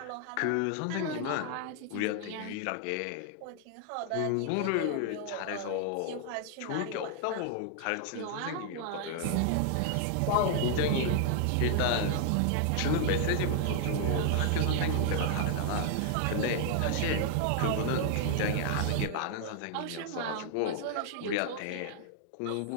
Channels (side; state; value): both; different; correlation 0.00